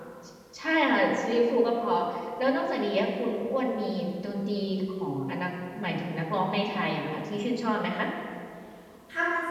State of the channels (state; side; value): identical; both; correlation 1.00